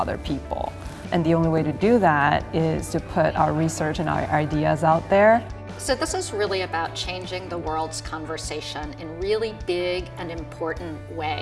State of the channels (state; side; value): identical; both; correlation 1.00